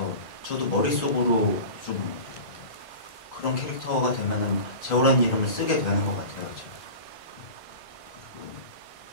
저도 머릿속으로 좀 그런 캐릭터가 되면은 재호라는 이름을 쓰게 되는 것 같아요. 제가. 그리고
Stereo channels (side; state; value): right; late; 1.5 ms